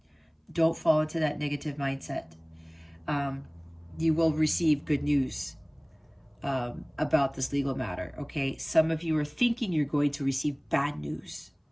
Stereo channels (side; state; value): both; identical; correlation 1.00